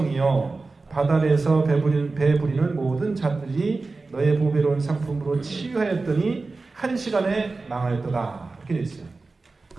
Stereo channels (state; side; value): quieter; left; 3.7 dB